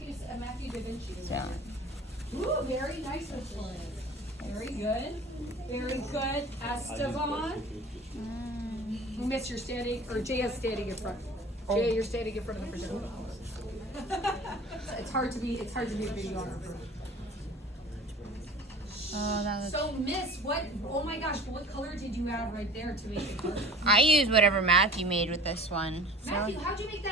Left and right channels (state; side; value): normal; both; correlation 0.44